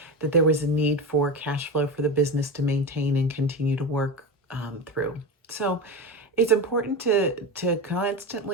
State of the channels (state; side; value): normal; both; correlation 0.22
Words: that there was a need for cash flow for the business to maintain and continue to work through. So it's important to